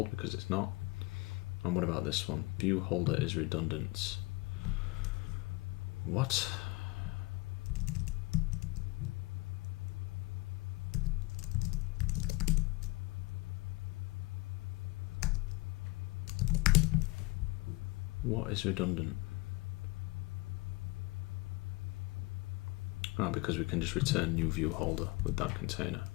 because it's not. And what about this one? View holder is redundant. What? What is redundant? Ah, because we can just return new view holder with that container.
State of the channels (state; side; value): quieter; right; 23.6 dB